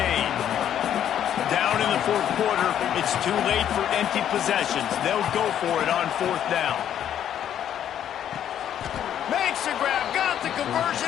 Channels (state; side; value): quieter; right; 10.1 dB